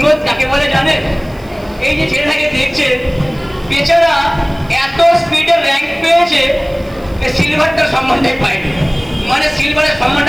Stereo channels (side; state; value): right; noise; hiss, 28 dB below the sound